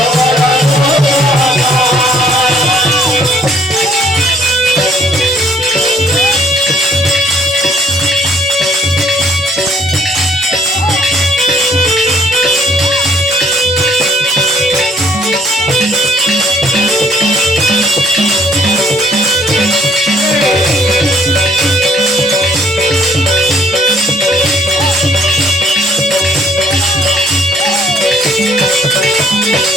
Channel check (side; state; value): both; normal; correlation 0.63